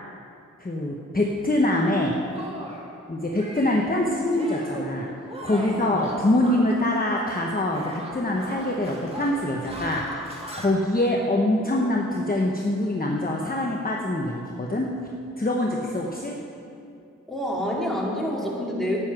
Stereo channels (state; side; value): normal; both; correlation 0.54